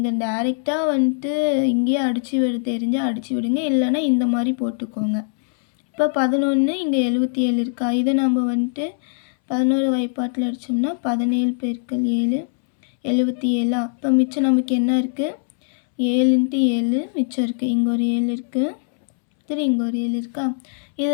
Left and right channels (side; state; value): right; silent; 65 dB below the other